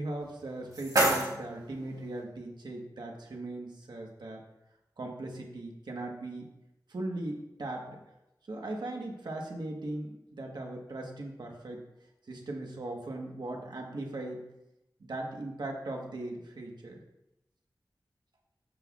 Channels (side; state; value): both; normal; correlation 0.67